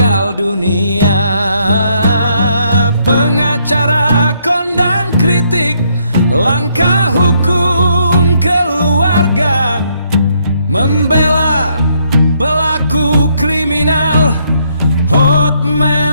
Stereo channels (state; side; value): inverted; both; correlation -0.72